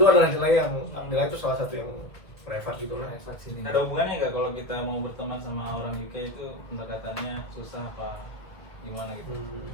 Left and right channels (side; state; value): right; late; 1.5 ms